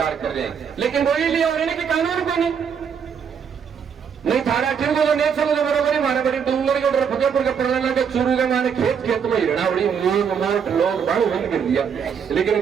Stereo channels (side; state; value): left; quieter; 7.1 dB